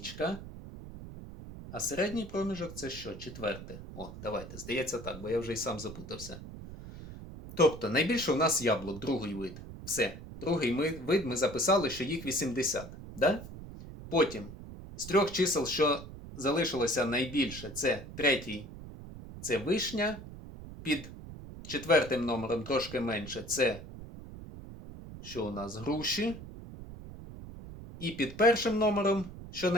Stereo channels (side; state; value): right; noise; rumble, 13 dB below the sound